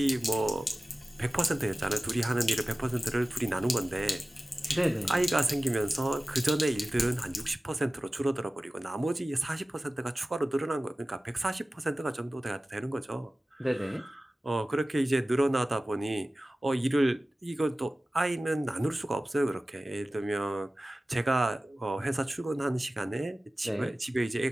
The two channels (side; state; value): both; normal; correlation 0.96